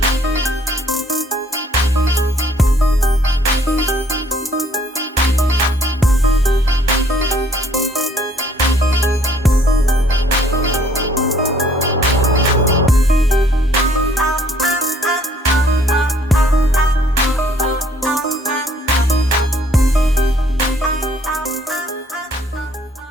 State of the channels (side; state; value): both; normal; correlation 0.61